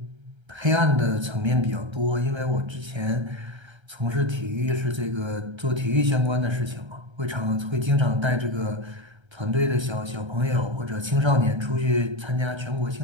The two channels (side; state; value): left; late; 1.3 ms